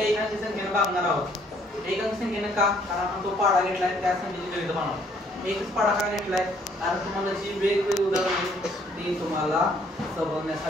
1 अंकी संख्येने भागणार आहोत. 1 अंकी संख्येने का? कारण आपण तो पाडा घेतलाय, त्या संख्येची गणित बनवणार. एकच पाडा का घेतलाय? कारण तुम्हाला जी वेगवेगळी उदाहरणे ती तुम्हाला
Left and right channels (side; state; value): both; normal; correlation 0.64